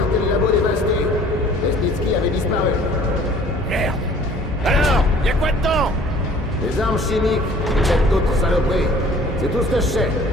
et le labo dévasté. Lesnitsky avait disparu. Des armes chimiques, peut-être d'autres saloperies. C'est tout ce que je sais.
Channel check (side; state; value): both; normal; correlation 0.52